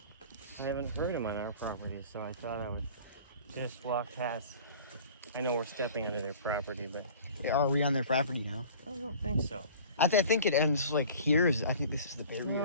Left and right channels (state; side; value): inverted; both; correlation -0.45